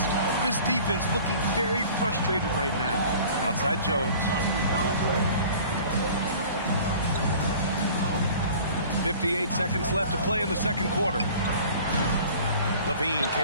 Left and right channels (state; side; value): inverted; both; correlation -0.46